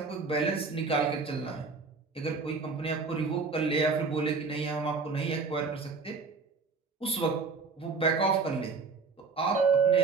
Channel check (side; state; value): left; quieter; 4.5 dB